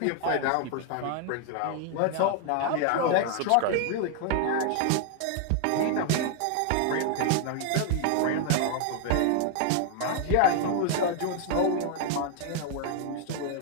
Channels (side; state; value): both; different; correlation 0.00